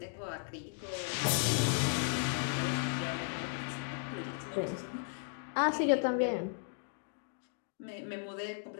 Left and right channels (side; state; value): right; silent; digital silence